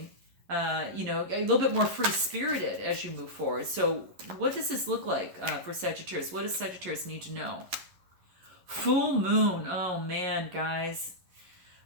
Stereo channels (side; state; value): left; late; 11 ms